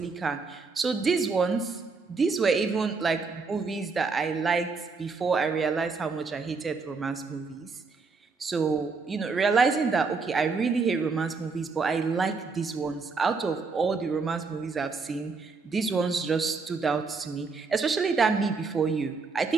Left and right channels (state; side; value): quieter; left; 4.5 dB